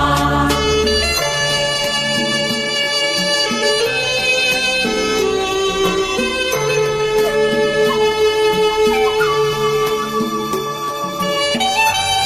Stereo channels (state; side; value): identical; both; correlation 1.00